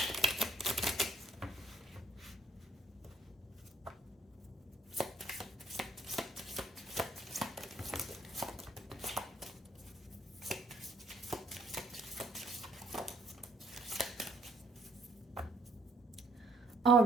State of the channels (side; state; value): both; normal; correlation 0.65